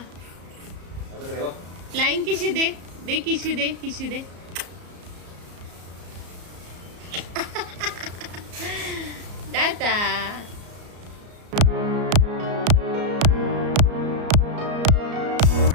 फ्लाइंग किशी दे. किशी दे. टाटा.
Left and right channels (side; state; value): left; late; 34 ms